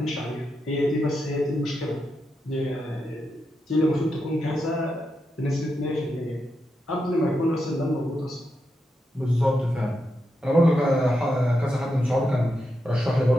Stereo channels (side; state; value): both; normal; correlation 0.85